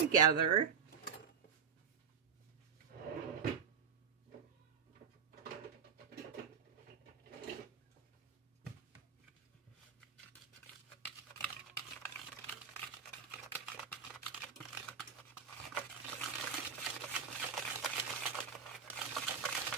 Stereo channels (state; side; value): quieter; left; 6.5 dB